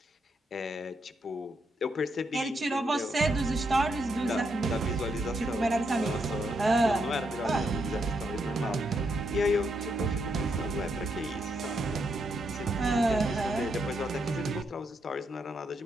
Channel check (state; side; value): normal; both; correlation 0.79